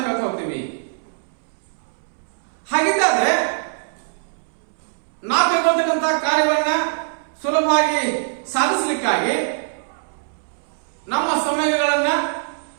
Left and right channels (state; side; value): silent; left; 64 dB below the other